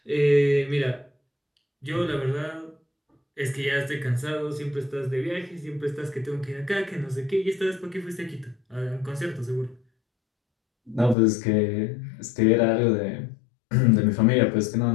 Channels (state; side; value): drops out; right; at 11.2 s